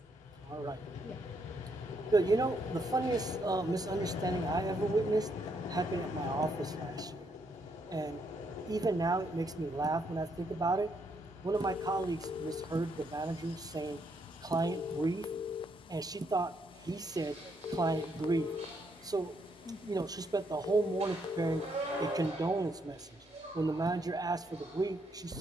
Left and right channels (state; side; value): normal; both; correlation 0.74